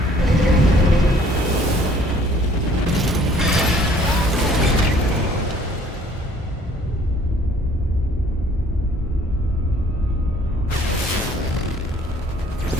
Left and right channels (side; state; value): both; normal; correlation 0.57